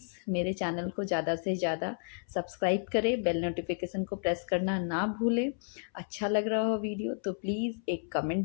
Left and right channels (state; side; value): silent; right; 57 dB below the other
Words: मेरे चैनल को ज़्यादा से ज़्यादा सब्सक्राइब करें, बेल नोटिफिकेशन को प्रेस करना ना भूलें। अच्छा लग रहा हो वीडियो तो प्लीज़ एक